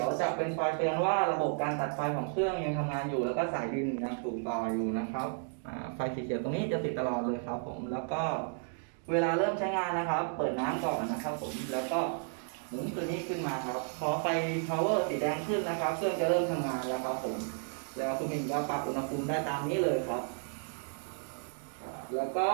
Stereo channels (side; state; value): left; silent; 56 dB below the other